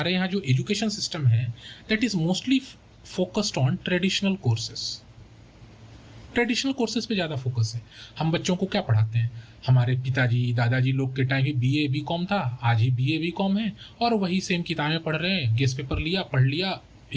यहाँ जो एजुकेशन सिस्टम है, that is mostly focused on traditional courses. Traditional courses पे ज़्यादा फोकस है। हम बच्चों को क्या पढ़ाते हैं? हमारे पिताजी दादाजी लोग के टाइम ही BA BCom था, आज ही BA BCom है, और वही सेम किताबें पढ़ रहे हैं, गेस्ट पेपर लिया, पढ़ लिया,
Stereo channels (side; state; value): both; identical; correlation 1.00